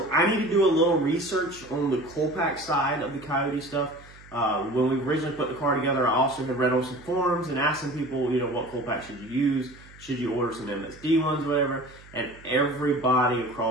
I need to do a little research on the coal pack side of the Coyote stuff. When we originally put the car together, I also had read on some forums and asked some people, what coal pack should you use? Should you order some MSD ones, whatever? And everybody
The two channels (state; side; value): noise; right; hum, 22 dB below the sound